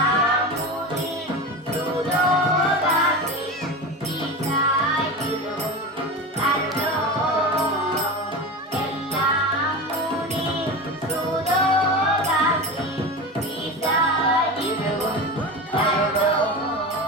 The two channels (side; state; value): both; normal; correlation 0.26